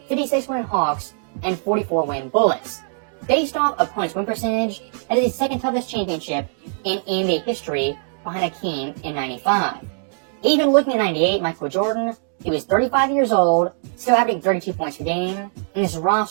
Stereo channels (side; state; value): left; silent; digital silence